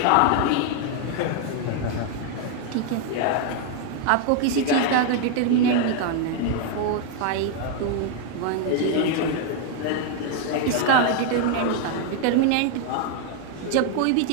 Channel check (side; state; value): both; different; correlation 0.00